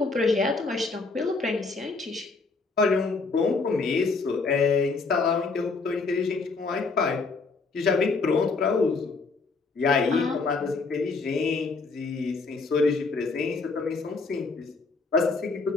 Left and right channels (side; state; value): right; quieter; 4.1 dB